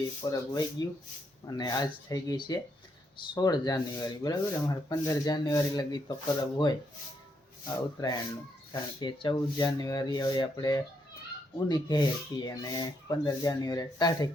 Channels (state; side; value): normal; both; correlation 0.77